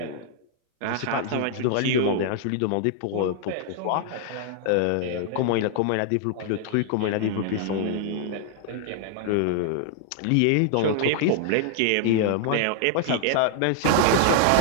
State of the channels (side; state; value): both; different; correlation 0.00